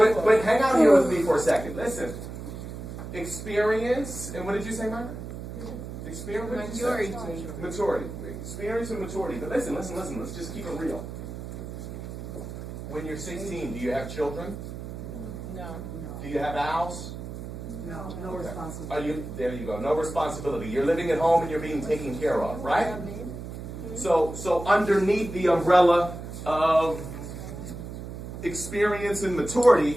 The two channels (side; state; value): right; noise; hum, 9 dB below the sound